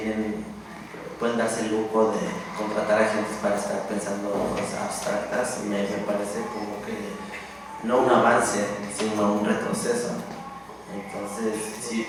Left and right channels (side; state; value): both; identical; correlation 1.00